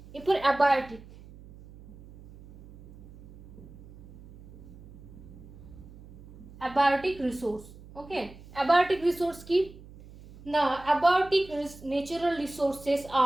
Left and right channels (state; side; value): noise; right; hum, 19 dB below the sound